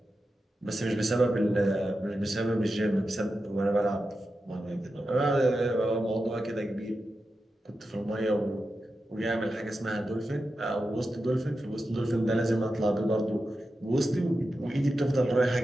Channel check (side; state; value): both; normal; correlation 0.90